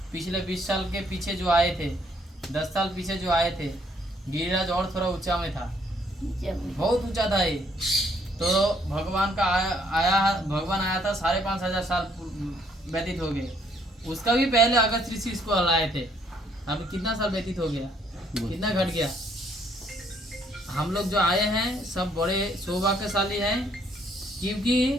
पिछले 20 साल के पीछे जो आए थे, 10 साल पीछे जो आए थे, गिरिराज और थोड़ा ऊंचा में था, बहुत ऊंचा था ये। तो भगवान आया था 5,500 साल व्यतीत हो गए। उसका भी पहले अगस्त ऋषि इसको हलाए थे। अभी कितना साल व्यतीत हो गया, कितना घट गया। हम लोग जो आए हैं सब बड़े सौभाग्यशाली हैं, क्योंकि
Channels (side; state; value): both; normal; correlation 0.67